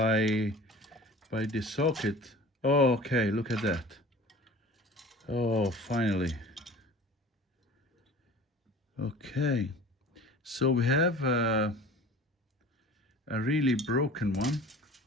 the socket. Oh, okay, look at that. Oh, finally. Okay, so we have a really broken one.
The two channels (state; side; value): normal; both; correlation 0.42